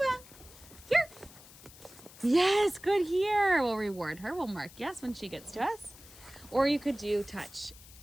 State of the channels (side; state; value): left; noise; hiss, 20 dB below the sound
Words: here. Yes, good here. We'll reward her. We'll mark yes when she gets to us. Or you could do touch